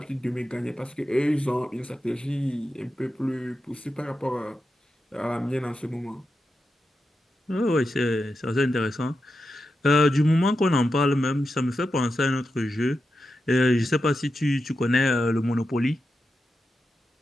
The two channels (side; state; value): both; normal; correlation 0.88